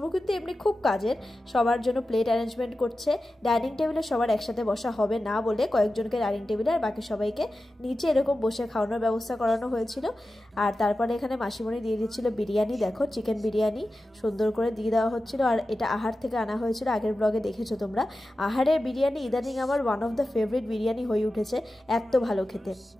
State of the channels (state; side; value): normal; both; correlation 0.93